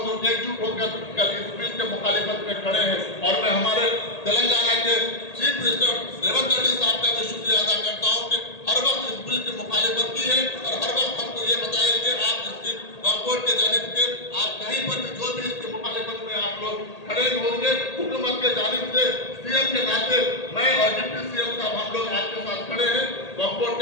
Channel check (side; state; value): right; late; 1.8 ms